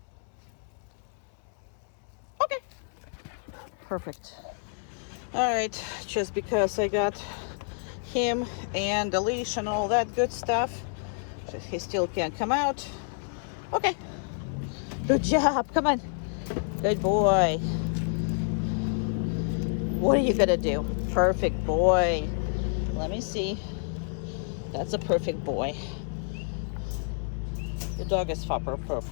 Okay, perfect. All right, just because I got him and the leash and all that good stuff, so he still can't come out. Okay, good job, come on. Good boy. What are you gonna do? Perfect boy. Let me see. That's a perfect boy. The dog is far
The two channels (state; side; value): silent; right; 59 dB below the other